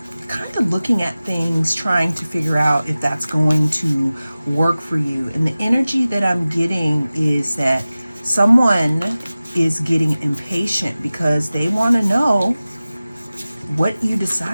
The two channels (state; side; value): inverted; both; correlation -0.97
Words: kind of looking at things, trying to figure out if that's going to work for you. And the energy that I'm getting is that someone is getting impatient because they want to know what you